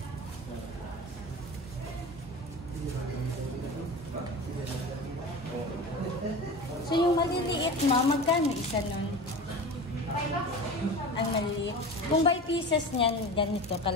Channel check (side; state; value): both; normal; correlation 0.32